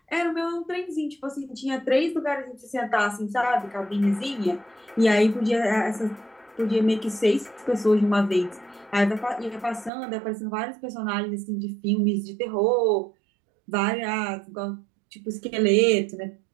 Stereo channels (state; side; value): drops out; left; at 9.9 s